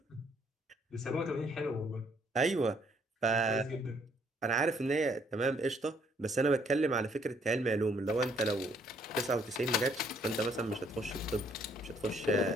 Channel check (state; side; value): normal; both; correlation 0.66